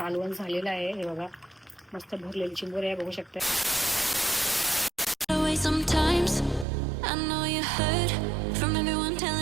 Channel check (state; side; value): drops out; left; at 6.7 s